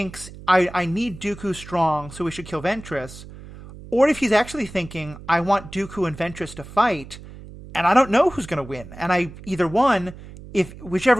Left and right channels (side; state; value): right; noise; hum, 16 dB below the sound